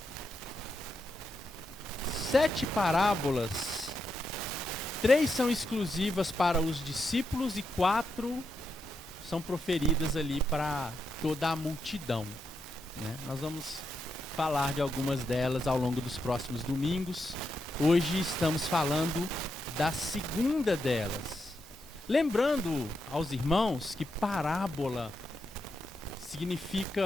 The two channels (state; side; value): normal; both; correlation 0.84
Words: 7 parábolas, 3 são exclusivas para os discípulos e 4 são proferidas ali para toda a multidão, né? Nós vamos falar de algumas delas ao longo dos próximos domingos. Hoje estamos falando da segunda delas. Lembrando aos irmãos que parábola